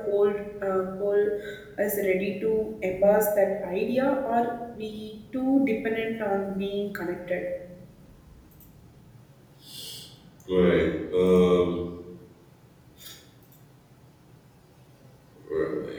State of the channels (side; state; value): both; identical; correlation 1.00